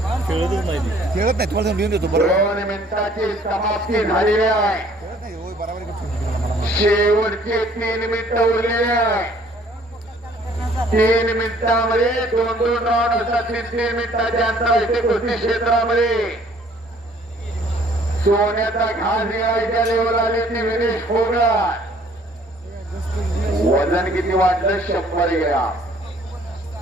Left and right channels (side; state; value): both; normal; correlation 0.58